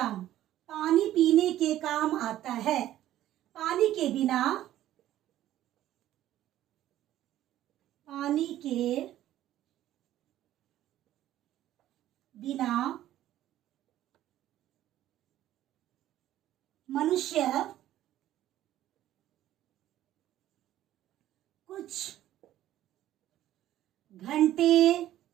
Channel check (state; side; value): quieter; left; 13.2 dB